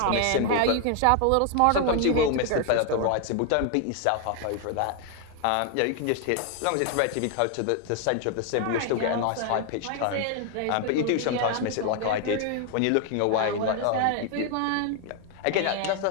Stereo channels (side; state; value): both; different; correlation 0.00